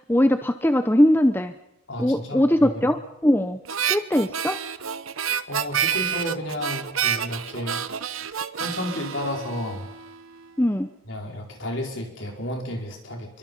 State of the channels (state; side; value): normal; both; correlation 0.69